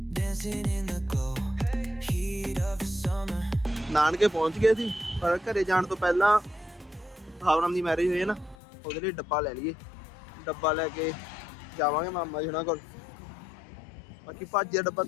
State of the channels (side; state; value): right; drops out; at 8.6 s